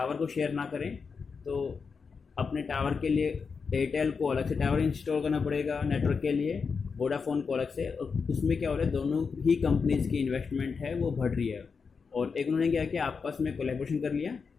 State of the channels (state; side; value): quieter; right; 5.4 dB